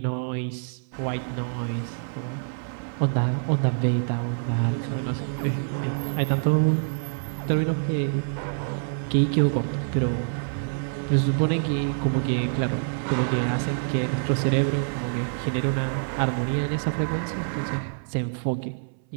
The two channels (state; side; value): silent; left; 59 dB below the other